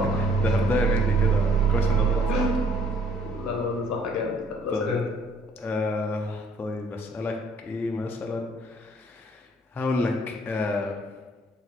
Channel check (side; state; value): both; normal; correlation 0.61